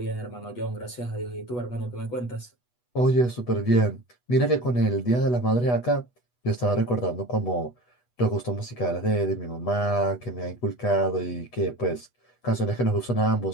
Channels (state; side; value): late; right; 8.2 ms